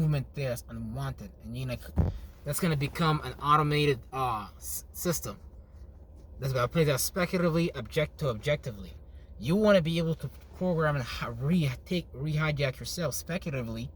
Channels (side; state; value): both; identical; correlation 1.00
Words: there that's unwanted, and that's gonna become an automated system that's gonna play that speculatively, objectively. You want to be able to program and rehijack yourself speculatively